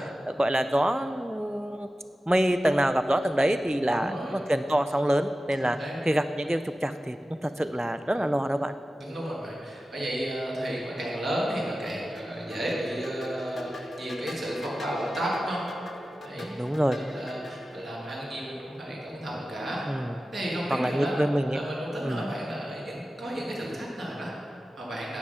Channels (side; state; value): both; normal; correlation 0.94